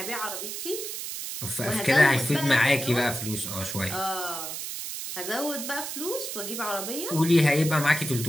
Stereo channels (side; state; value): right; noise; hiss, 6 dB below the sound